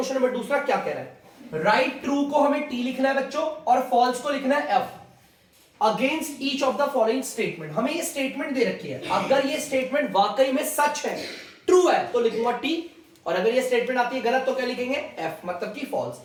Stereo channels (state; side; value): identical; both; correlation 1.00